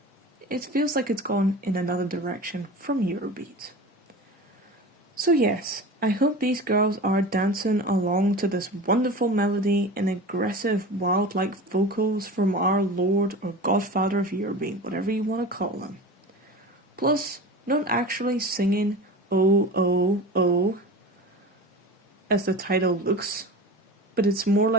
it feels like it's gone in another direction from Eurobeat. So yes, I hope these girls are dancing along to this wonderful melody and aggressive, wild-like vocals from our Lord or Godfather of Eurobeat, whatever you want to call him. Plus, not actually singing "oh, oh, oh" as the title looks, but it's more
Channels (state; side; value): normal; both; correlation 0.33